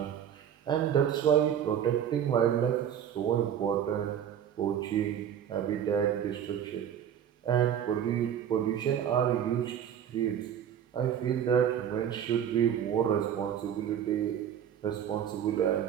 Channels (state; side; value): quieter; left; 9.3 dB